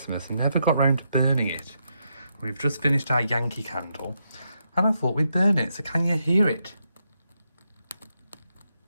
and never got round to burning it. We've just finished our Yankee candle, and I thought we'd burn it. So can you hear it?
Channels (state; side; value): inverted; both; correlation -0.81